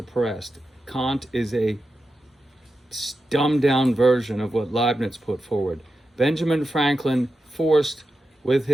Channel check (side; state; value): both; normal; correlation 0.90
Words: Kant is a dumbed down version of what Leibniz put forward. Benjamin Franklin forced with